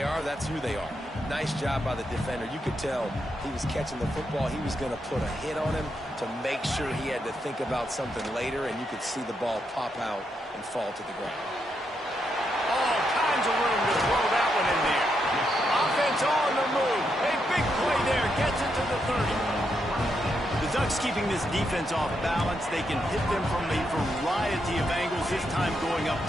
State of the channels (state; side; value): normal; both; correlation 0.81